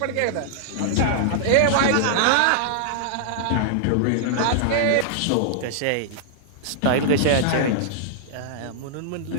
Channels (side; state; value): both; different; correlation -0.01